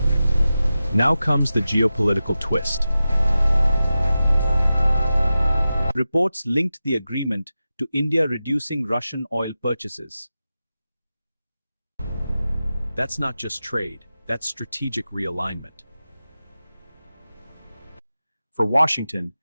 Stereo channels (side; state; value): both; inverted; correlation -0.93